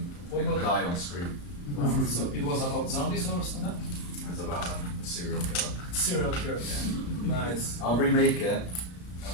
Made them die on the screen. Wow. So it was about zombies or something? It was about a serial killer. Serial killer. Yeah. Nice. I'll remake it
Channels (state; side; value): late; right; 34 ms